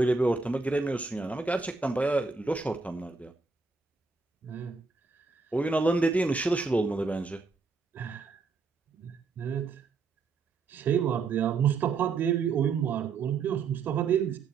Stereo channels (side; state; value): left; quieter; 4.5 dB